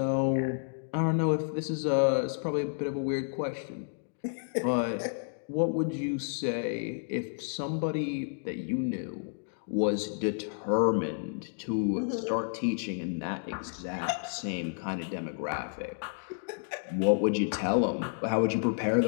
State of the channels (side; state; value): right; silent; digital silence